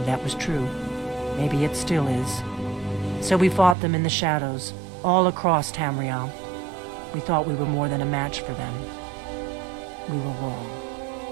that was true. Maybe it still is. So we fought them in the shadows, all across Tamriel. We thought we were more than a match for them. We were wrong.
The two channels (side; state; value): left; drops out; at 3.8 s